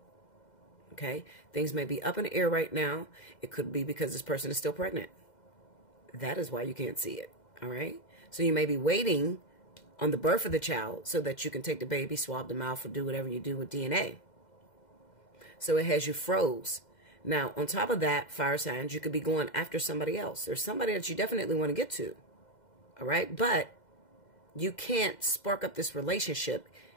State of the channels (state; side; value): late; right; 2.0 ms